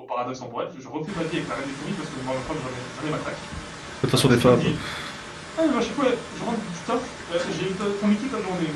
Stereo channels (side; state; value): both; identical; correlation 1.00